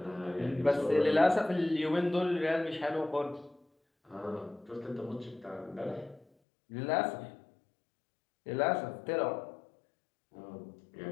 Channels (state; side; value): drops out; right; at 6.2 s